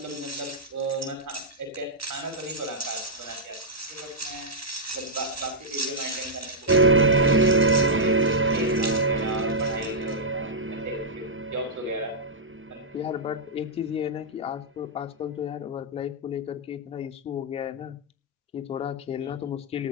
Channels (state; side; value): normal; both; correlation -0.08